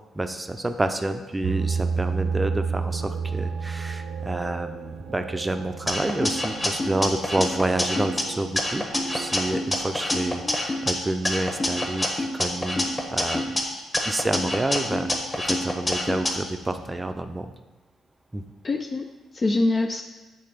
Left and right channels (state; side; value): normal; both; correlation 0.91